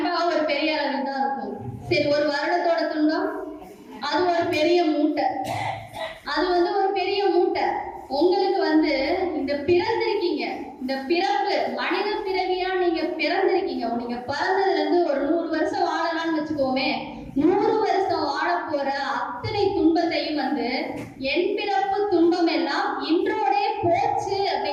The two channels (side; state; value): both; identical; correlation 1.00